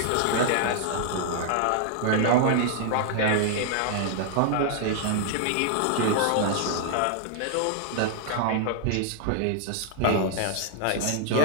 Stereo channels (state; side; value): different; both; correlation -0.01